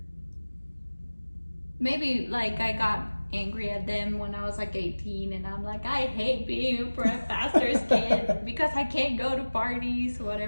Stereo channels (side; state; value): both; inverted; correlation -1.00